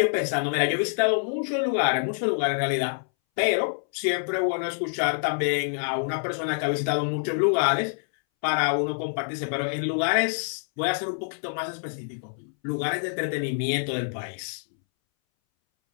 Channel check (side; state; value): right; silent; 61 dB below the other